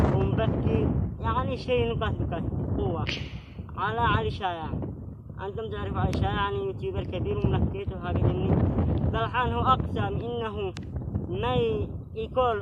ومبكي، يعني شيء نكت قوة على علي شايع. أنتم تعرفوا علي شايع يعني يوتيوبر كبير وملكيت وهذا مني. الحين هو أقسم إنه ما يكون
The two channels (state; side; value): identical; both; correlation 1.00